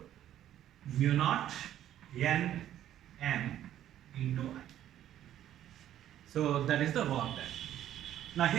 mu naught n m into I. So that is the work done. Now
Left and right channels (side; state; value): left; quieter; 11.7 dB